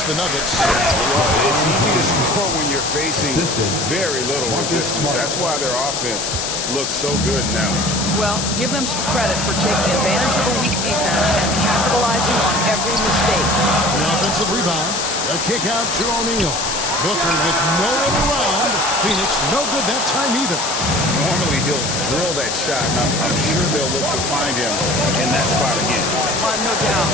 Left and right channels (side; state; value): left; noise; hiss, 2 dB below the sound